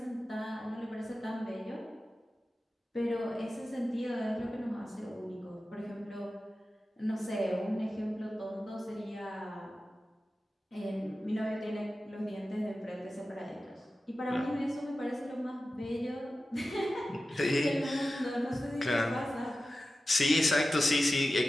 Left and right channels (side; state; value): both; normal; correlation 0.94